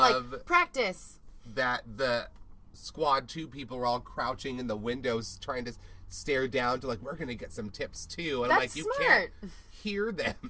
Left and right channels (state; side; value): identical; both; correlation 1.00